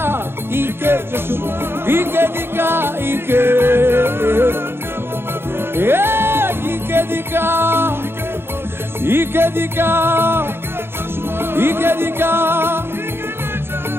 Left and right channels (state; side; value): late; left; 0.11 ms